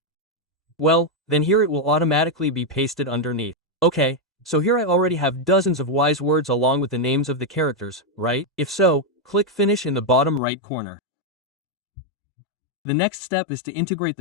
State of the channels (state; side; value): drops out; right; at 10.4 s